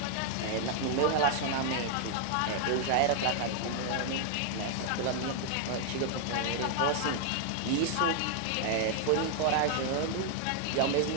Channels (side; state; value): both; different; correlation 0.00